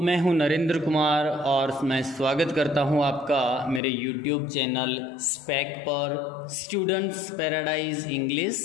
हूं नरेंद्र कुमार और मैं स्वागत करता हूं आपका मेरे यूट्यूब चैनल स्पैक पर स्टूडेंट्स पैराडाइज इंग्लिश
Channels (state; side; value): drops out; right; at 3.8 s